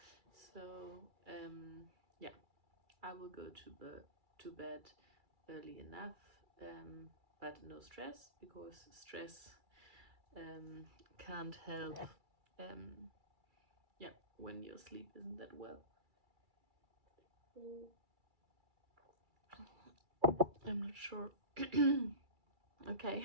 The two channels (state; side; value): late; left; 2.3 ms